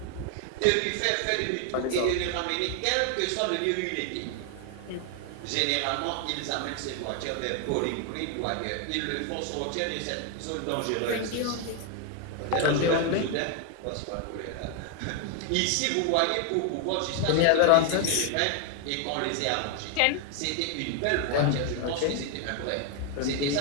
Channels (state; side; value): different; both; correlation 0.01